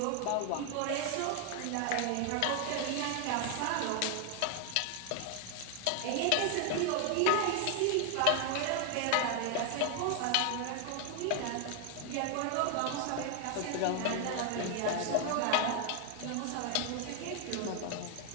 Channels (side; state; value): both; different; correlation 0.00